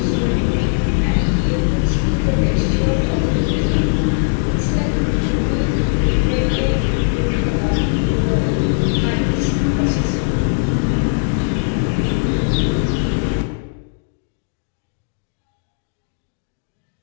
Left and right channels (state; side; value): silent; right; digital silence